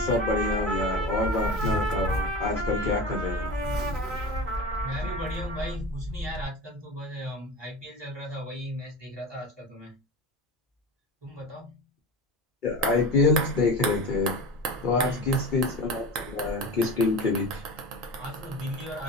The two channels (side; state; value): both; normal; correlation 0.29